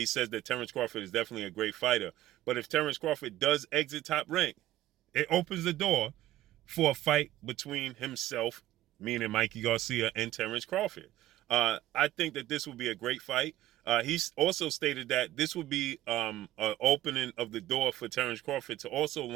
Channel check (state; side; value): quieter; left; 14.4 dB